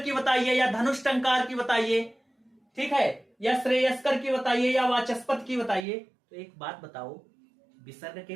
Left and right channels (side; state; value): left; drops out; at 5.9 s